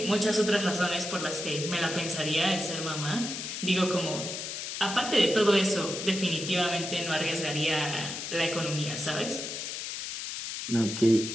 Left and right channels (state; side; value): noise; left; hiss, 6 dB below the sound